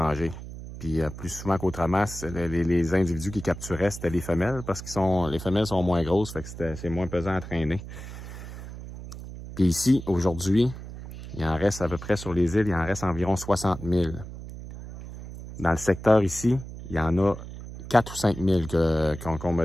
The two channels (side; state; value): right; noise; hum, 12 dB below the sound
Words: Puis plus souvent qu'autrement, les individus qui capturaient, c'était les femelles, parce que les femelles sont moins grosses, fait que c'est moins pesant à traîner. Puis ici, aujourd'hui, il en reste à peu près sur les îles, il en reste environ 60 000. Dans le secteur ici, il y en a 4 ou 5 000 qu'on